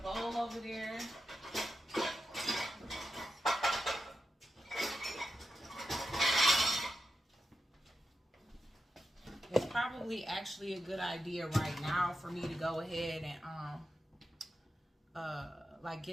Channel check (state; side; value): normal; both; correlation 0.89